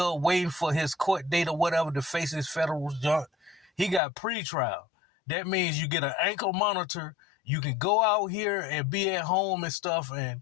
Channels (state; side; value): drops out; right; at 4.0 s